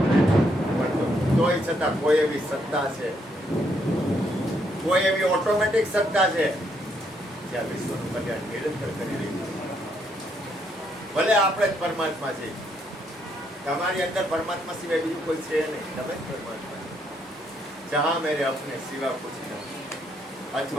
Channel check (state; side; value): normal; both; correlation 0.73